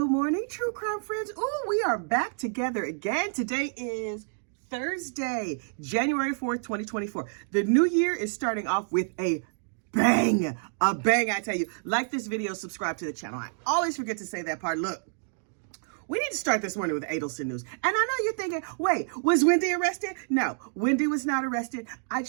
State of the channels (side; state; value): left; silent; digital silence